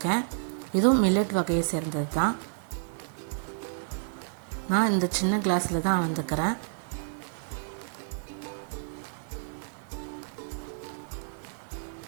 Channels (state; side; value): silent; left; digital silence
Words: இதுவும் மில்லட் வகையை சேர்ந்தது தான். நான் இந்த சின்ன கிளாஸில் தான் அளந்துக்கிறேன்.